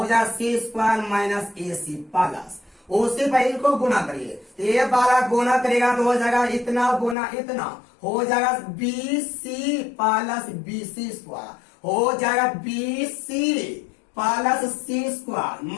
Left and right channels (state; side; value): drops out; right; at 7.2 s